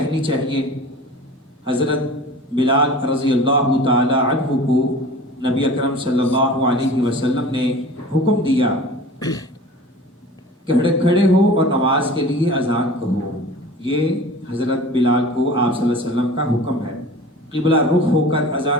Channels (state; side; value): normal; both; correlation 0.40